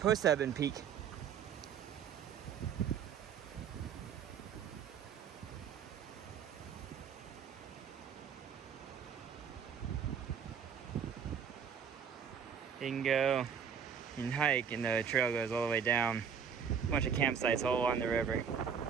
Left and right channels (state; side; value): quieter; left; 7.3 dB